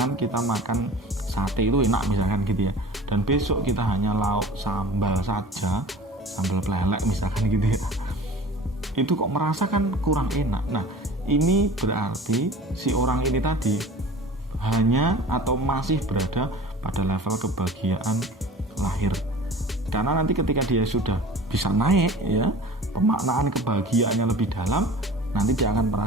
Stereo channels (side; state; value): both; normal; correlation 0.41